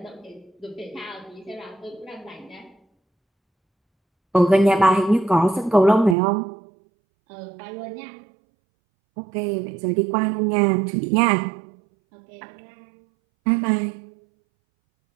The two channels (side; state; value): left; drops out; at 6.2 s